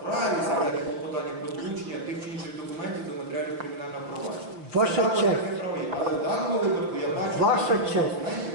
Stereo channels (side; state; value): left; late; 5.6 ms